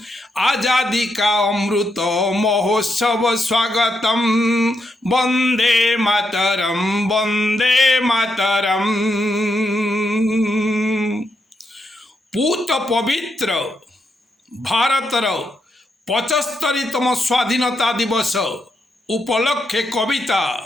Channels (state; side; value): normal; both; correlation 0.81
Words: आजादी का अमृत महोत्सव स्वागतम। वंदे मातरम, वंदे मातरम। पूत पवित्र भारतर 75तम स्वाधीनता दिवस उपलक्षे कविता